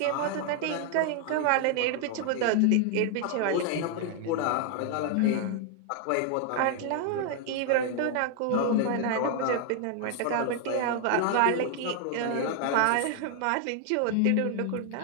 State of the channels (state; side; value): different; both; correlation 0.00